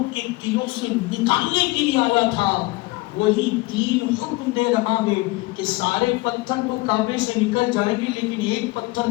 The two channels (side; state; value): right; quieter; 22.5 dB